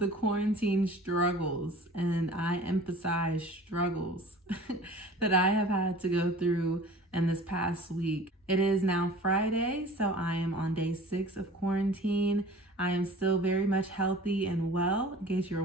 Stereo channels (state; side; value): normal; both; correlation 0.44